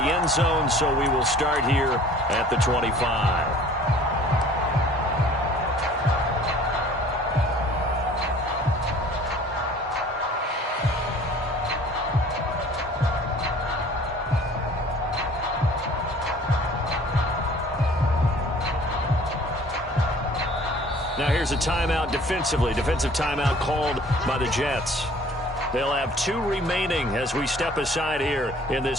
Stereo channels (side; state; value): both; normal; correlation 0.51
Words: zone, so we will start here at the 25. Now here's a timeout defensively. Defensive timeout called by the Jets. They'll have 2 remaining as we step aside here in